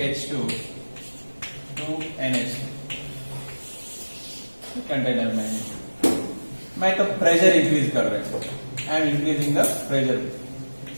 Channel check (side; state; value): both; inverted; correlation -1.00